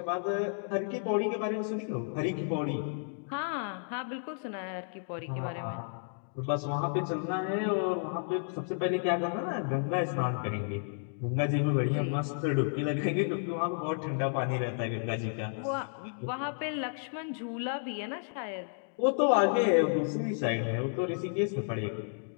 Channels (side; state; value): right; silent; digital silence